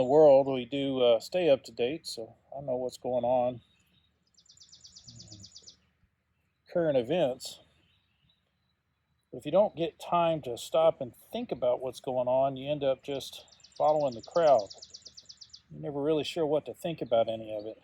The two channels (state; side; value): identical; both; correlation 1.00